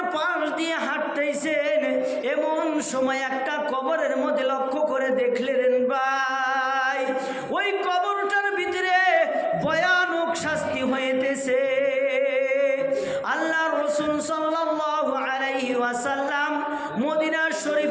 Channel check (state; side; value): identical; both; correlation 1.00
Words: পাশ দিয়ে হাঁটতেছেন, এমন সময় একটা কবরের মধ্যে লক্ষ্য করে দেখলেন ভাই ওই কবরটার ভিতরে ভয়ানক শাস্তি হইতেছে। আল্লাহর রাসূল সাল্লাল্লাহু আলাইহি ওয়াসাল্লাম মদিনা